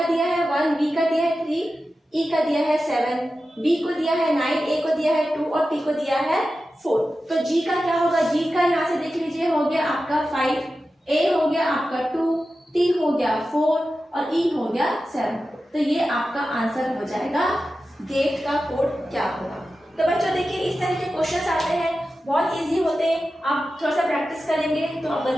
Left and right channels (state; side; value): normal; both; correlation 0.93